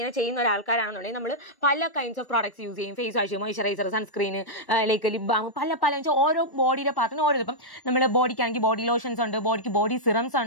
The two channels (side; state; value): right; late; 1.1 ms